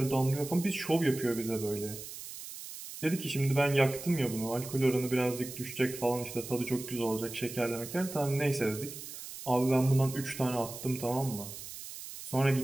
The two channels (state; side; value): noise; right; hiss, 11 dB below the sound